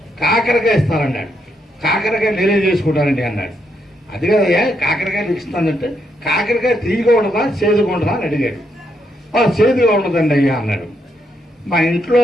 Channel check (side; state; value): both; normal; correlation 0.78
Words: కాకరకాయ ఇస్తానన్నాడు. కాకరకాయ నేనే చేసుకుంటానండి అన్నాడు. అది కదయ్యా కాకరకాయ ఇస్తానంటే కాకరకాయ తీయగా ఉండదా చేదుగా ఉండదా అని అడిగాడు. చేదుగా ఉండదండి అయ్యా అన్నాడు. మా ఇంట్లో